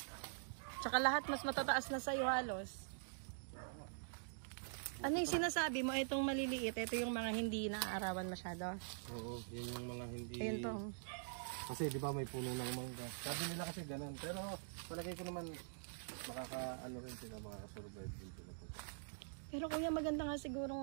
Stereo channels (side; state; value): left; silent; digital silence